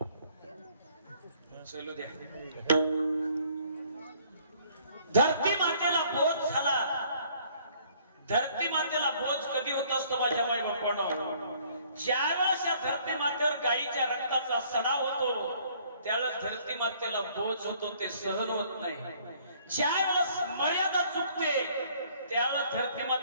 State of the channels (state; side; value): inverted; both; correlation -0.60